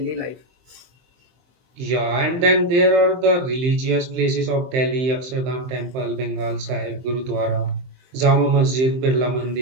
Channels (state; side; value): late; left; 23 ms